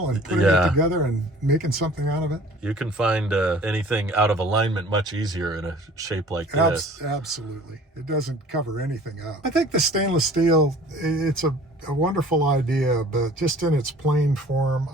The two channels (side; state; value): both; normal; correlation 0.49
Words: and putting Yeah. it together and making something out of it. You can find anything out of alignment much easier in a shape like this. Absolutely. It doesn't cover anything up. I think the stainless steel, it's a wonderful idea, but just in its plain form,